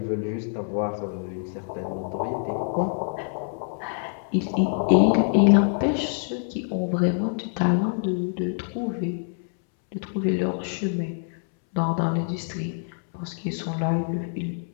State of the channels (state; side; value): silent; right; 61 dB below the other